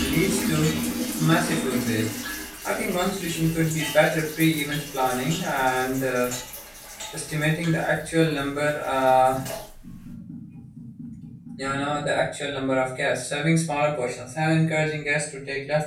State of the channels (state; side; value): identical; both; correlation 1.00